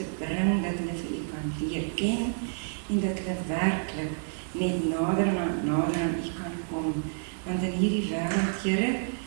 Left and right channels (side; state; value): left; silent; digital silence